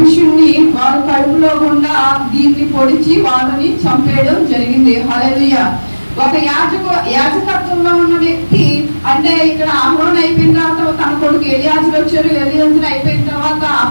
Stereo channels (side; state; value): both; inverted; correlation -1.00